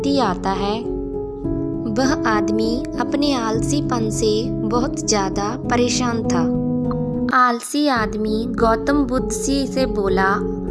आता है। वह आदमी अपने आलसीपन से बहुत ज़्यादा परेशान था। आलसी आदमी गौतम बुद्ध जी से बोला,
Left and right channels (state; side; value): identical; both; correlation 1.00